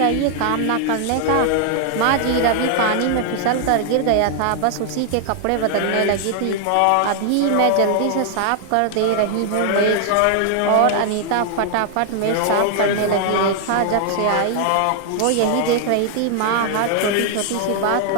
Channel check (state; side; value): different; both; correlation 0.00